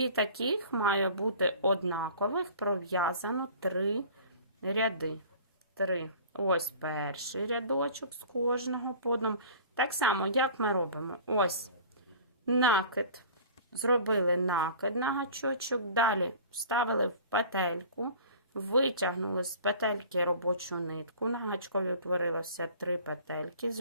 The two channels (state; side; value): inverted; both; correlation -0.44